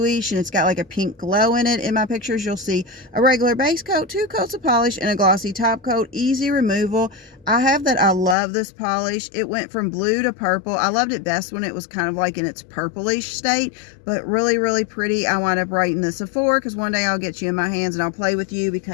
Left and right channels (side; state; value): right; drops out; at 8.3 s